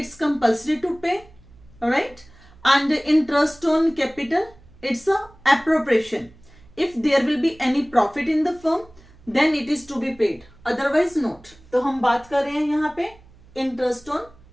compulsory to pay, right? And interest on capital it's a appropriation. If there will be any profit in the firm then it is to be paid, otherwise not. तो हम बात कर रहे हैं यहाँ पे इंटरेस्ट ऑन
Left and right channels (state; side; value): noise; right; hum, 25 dB below the sound